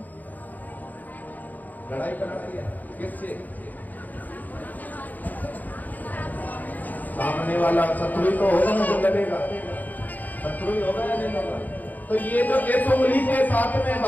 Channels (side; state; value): right; late; 0.082 ms